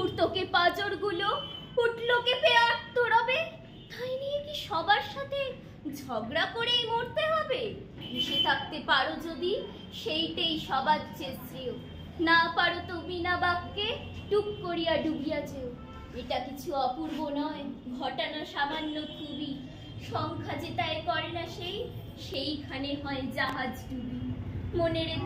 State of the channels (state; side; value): identical; both; correlation 1.00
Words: পাজরগুলো উঠলো কেঁপে আত্মরবে। তাই নিয়ে কি সবার সাথে ঝগড়া করেই মরতে হবে? ভেসে থাকতে পারো যদি, সেইটাই সবার চেয়ে শ্রেয়। না পারো তো বিনা বাক্যে টুক করিয়া ডুবিয়া যেও। এটা কিছু অপূর্ব নয়, ঘটানো সামান্য খুবই, সংখ্যা যে তাই করে না সেইখানে হয় জাহাজ ডুবি। মনের